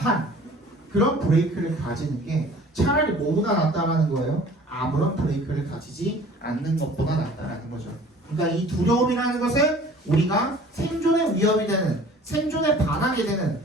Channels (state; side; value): normal; both; correlation 0.48